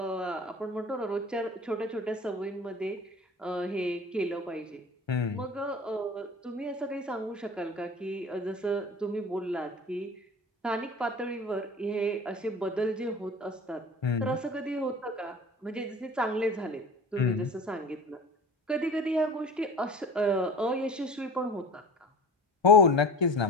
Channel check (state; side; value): normal; both; correlation 0.38